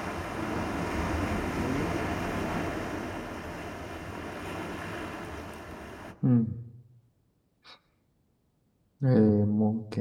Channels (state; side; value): identical; both; correlation 1.00